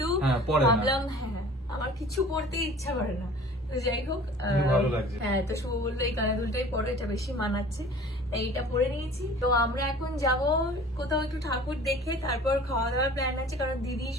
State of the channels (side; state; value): both; normal; correlation 0.46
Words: ভাবলাম হ্যাঁ আমার কিছু পড়তে ইচ্ছা করে না। তো যাই হোক, ভালো লাগছে। হ্যাঁ, তো শুভ বললো এই কানের দুলটাই পরো, এটা বেশি মানাচ্ছে, এইটা পরে নিয়েছি। তো আমরা এখন যাব কোথাও একটু ঠাকুর দেখে, তারপর খাওয়া দাওয়ার প্ল্যান আছে, কারণ দিদি,